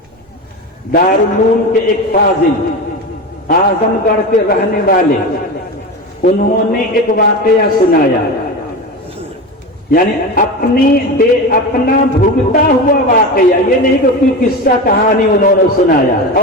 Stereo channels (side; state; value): both; normal; correlation 0.24